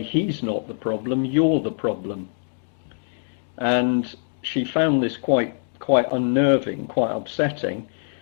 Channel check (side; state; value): right; silent; digital silence